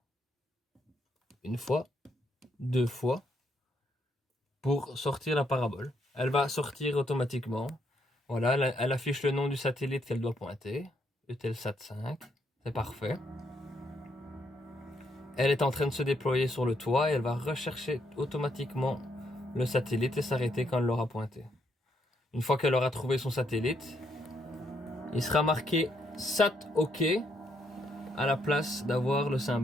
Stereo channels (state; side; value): normal; both; correlation 0.75